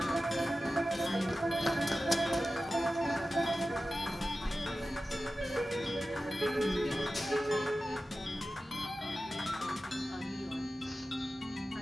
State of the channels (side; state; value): both; normal; correlation 0.94